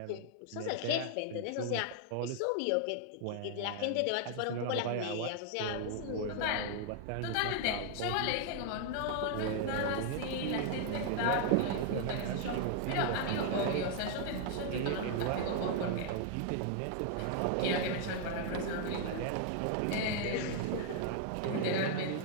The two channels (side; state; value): both; different; correlation 0.00